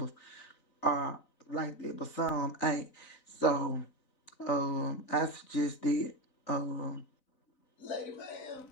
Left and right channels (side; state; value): right; late; 4.0 ms